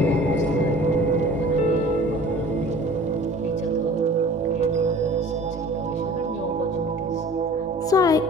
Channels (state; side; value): normal; both; correlation 0.45